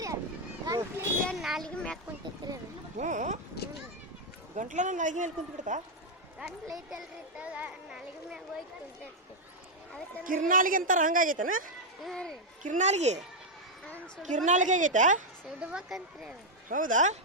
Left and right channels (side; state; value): both; normal; correlation -0.01